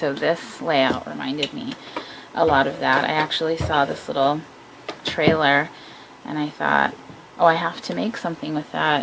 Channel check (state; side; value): identical; both; correlation 1.00